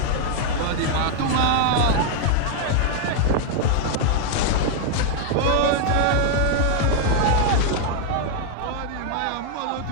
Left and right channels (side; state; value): both; different; correlation 0.00